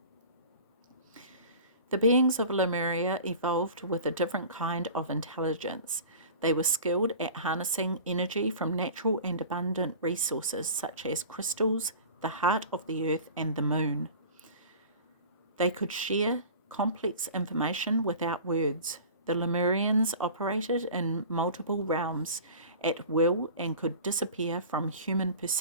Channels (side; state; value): both; inverted; correlation -0.39